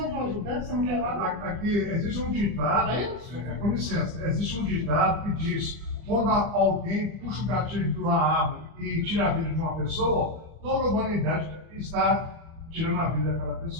de uma ajudante, você não quer lá? Aqui existe um ditado, É isso? com licença, existe um ditado que diz: quando alguém puxa o gatilho de uma arma e tira a vida de uma pessoa, toda a humanidade está tirando a vida daquela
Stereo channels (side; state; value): left; late; 38 ms